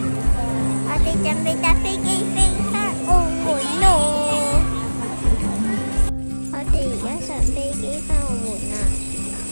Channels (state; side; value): inverted; both; correlation -1.00